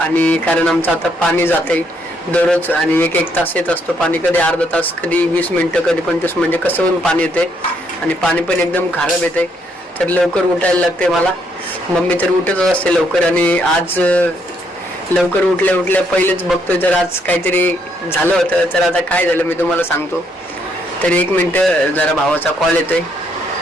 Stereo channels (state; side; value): normal; both; correlation 0.73